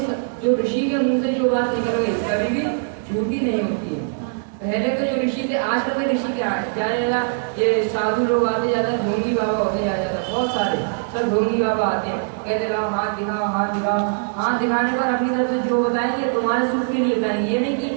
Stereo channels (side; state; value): left; silent; digital silence